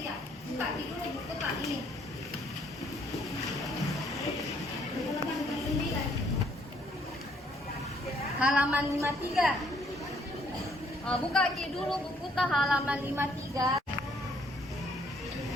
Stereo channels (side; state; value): both; normal; correlation 0.66